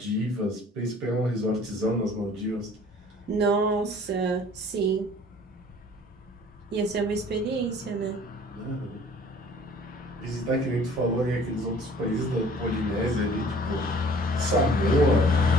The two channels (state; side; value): normal; both; correlation 0.52